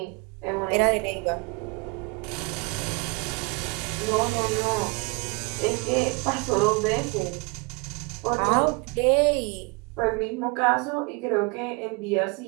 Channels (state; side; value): quieter; left; 29.3 dB